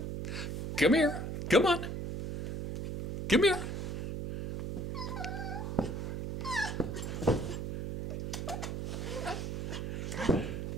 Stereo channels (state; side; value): noise; right; hum, 4 dB below the sound